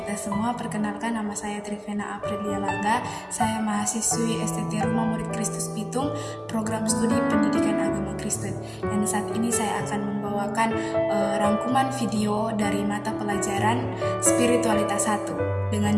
semua. Perkenalkan, nama saya Trivena Aprilia Langga. Saya mahasiswi STT Rumah Murid Kristus Pitung, program studi pendidikan agama Kristen. Dan saat ini saya akan membawakan rangkuman video dari mata pelajaran Spiritualitas 1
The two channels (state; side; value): identical; both; correlation 1.00